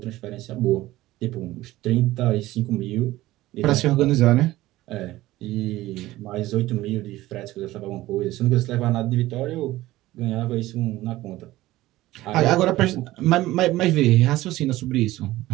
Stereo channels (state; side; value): quieter; left; 16.8 dB